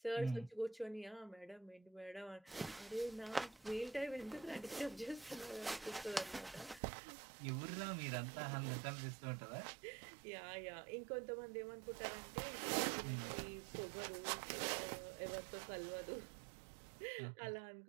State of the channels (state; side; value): drops out; left; at 6.8 s